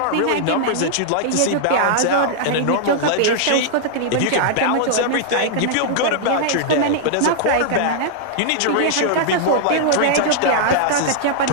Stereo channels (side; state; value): both; different; correlation -0.01